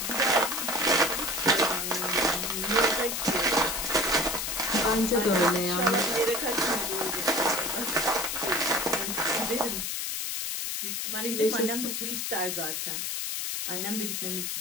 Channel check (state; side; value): noise; left; hiss, 2 dB below the sound